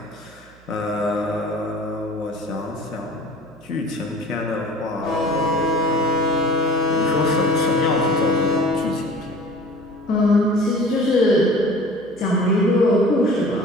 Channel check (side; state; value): right; noise; hum, 27 dB below the sound